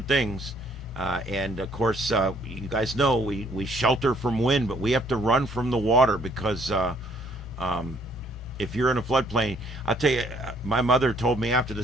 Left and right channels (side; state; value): both; normal; correlation 0.64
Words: things. And of course, you guys know we shelter from wind, but we have to run from the water because if you're in a floodplain, I'll tell you, my mother told me after